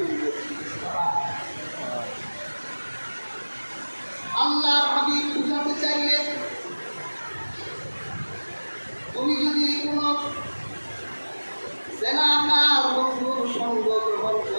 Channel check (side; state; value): both; inverted; correlation -1.00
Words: গেছি। আল্লাহর হাবিব বুঝাতে চাইলে তুমি যদি কোন জেনাকার বন্ধুর সঙ্গ গ্রহণ